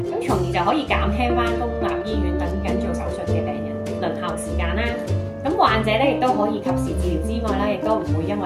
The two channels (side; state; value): both; identical; correlation 1.00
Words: 咁從而就可以減輕翻公立醫院等緊做手術嘅病人輪候時間啦。咁患者咧亦都可以及時治療之外啦，亦都唔會因